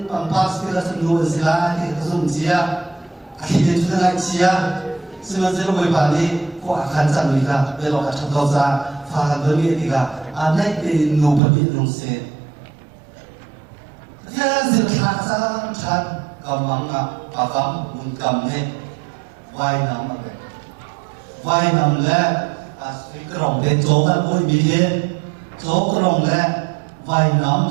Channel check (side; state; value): left; drops out; at 11.4 s